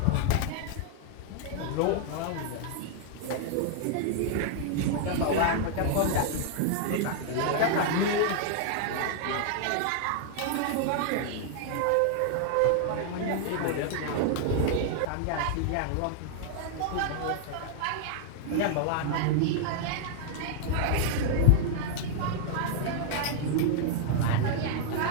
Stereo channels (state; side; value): different; both; correlation 0.00